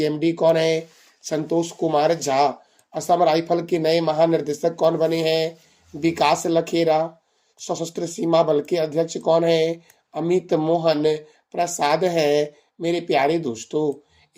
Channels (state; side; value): identical; both; correlation 1.00